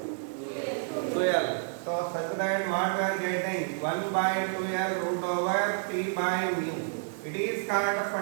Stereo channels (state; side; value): silent; left; digital silence